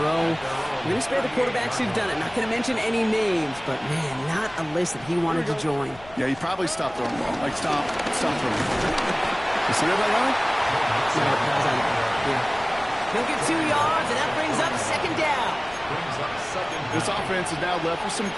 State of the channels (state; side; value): noise; left; rumble, 21 dB below the sound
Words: row. We're going to spare the quarterbacks who've done it. Not going to mention any names, but, man, not a list that he wanted to join. Yeah, he probably stopped throwing the ball. Like, stop throwing. You see that right? Yeah. He'll get 2 yards, and that brings up 2nd down. This offense is now left with some